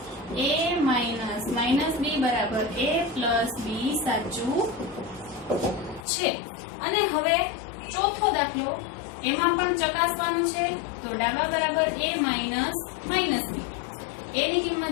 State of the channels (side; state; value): right; drops out; at 6.1 s